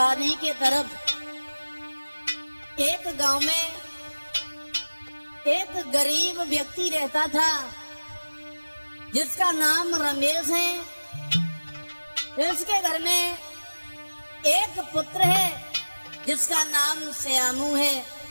के तरफ। एक गांव में एक गरीब व्यक्ति रहता था जिसका नाम रमेश है। इसके घर में एक पुत्र है जिसका नाम श्यामू है।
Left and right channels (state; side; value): inverted; both; correlation -1.00